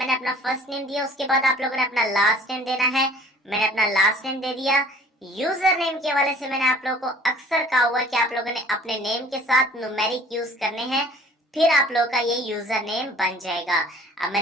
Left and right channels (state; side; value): normal; both; correlation 0.51